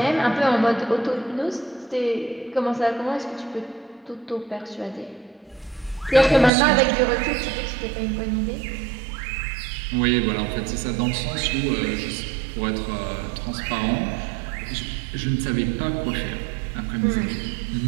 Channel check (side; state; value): left; drops out; at 6.5 s